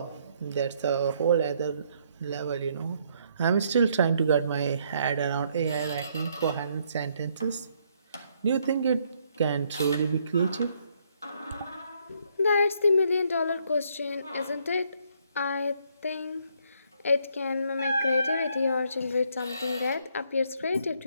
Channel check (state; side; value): inverted; both; correlation -0.70